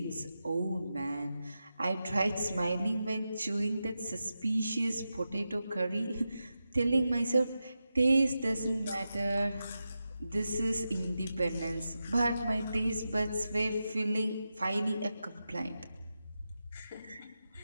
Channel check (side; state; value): both; inverted; correlation -0.90